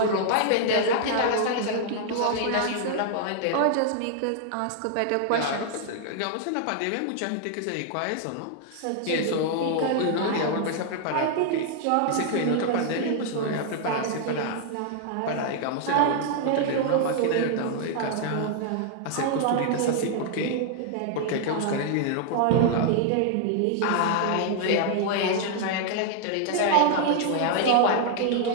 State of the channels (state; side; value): different; both; correlation -0.01